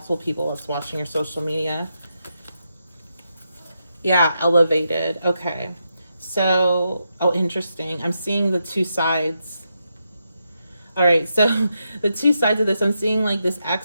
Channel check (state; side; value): inverted; both; correlation -0.84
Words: people that's watching your social media. Yeah, elevated. Okay. So, oh, interesting. I'm seeing the two sides. All right. So the two sides of this, I'm seeing like this